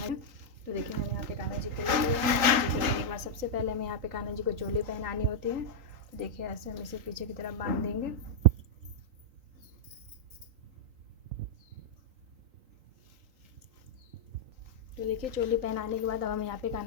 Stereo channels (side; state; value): left; late; 3.8 ms